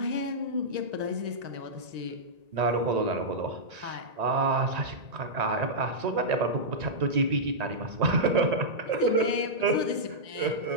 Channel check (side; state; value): left; late; 1.9 ms